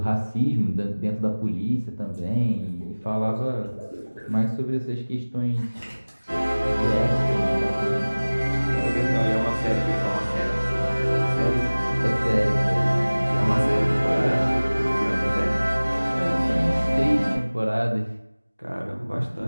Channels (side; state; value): both; inverted; correlation -1.00